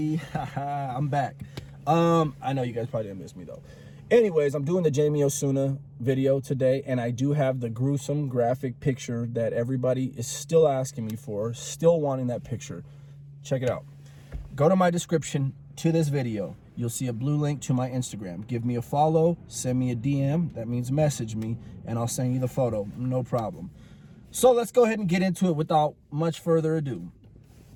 I'm back. I know you guys probably didn't miss me though. Anyways, I'm doing the Jamie Osuna video today, and I do have the gruesome graphic picture that everybody is still asking me for, still wanting that picture. Check it out. Go to my description to this video. You'll see a blue link to my Instagram. Give me a follow, send me a DM, that means message me, and I'll send you the photo, no problem. So let's go ahead and get into it without much further ado.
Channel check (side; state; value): both; identical; correlation 1.00